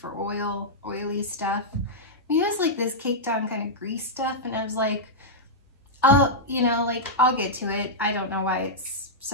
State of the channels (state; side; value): normal; both; correlation -0.08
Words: oily stuff. I mean, it was like this caked on kind of grease stuff, and I was like, oh, you know, like, I'll get to it. I don't know why it's